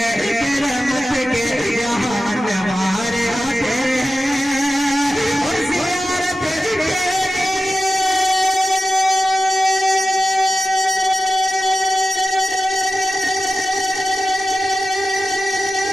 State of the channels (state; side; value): normal; both; correlation 0.94